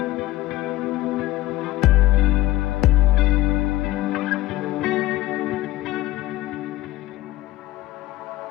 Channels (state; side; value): quieter; right; 16.5 dB